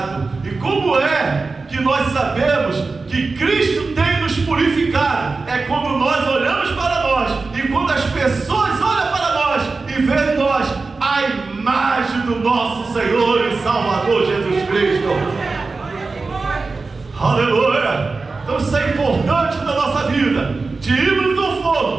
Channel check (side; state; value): left; quieter; 4.0 dB